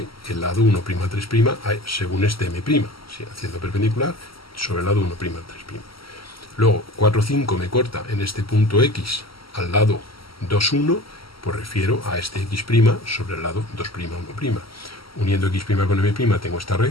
el lado 1', 3', según este M', ¿sí? Haciendo perpendicular sobre el lado 1', 3'. Luego 4, 5 me corta en este punto X al lado 2, 1, pues refiero a este X' sobre el lado 2', 1'. Uniendo X' con M' tengo esta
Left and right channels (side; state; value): right; late; 0.75 ms